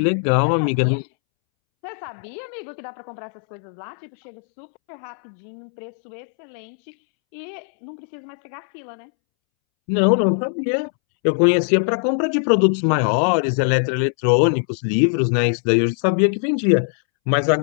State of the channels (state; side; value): silent; right; 65 dB below the other